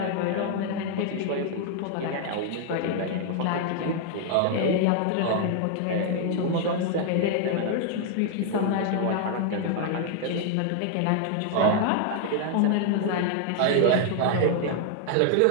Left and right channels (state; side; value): different; both; correlation 0.00